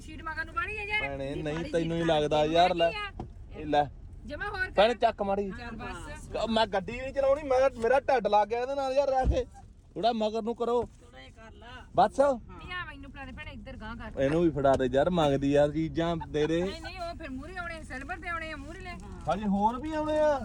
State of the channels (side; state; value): both; identical; correlation 1.00